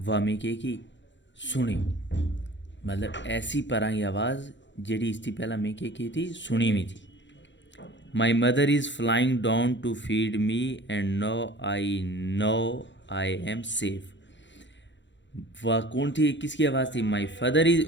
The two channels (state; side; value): late; right; 0.53 ms